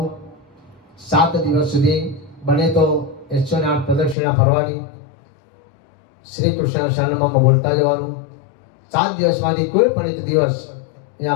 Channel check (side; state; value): right; drops out; at 4.2 s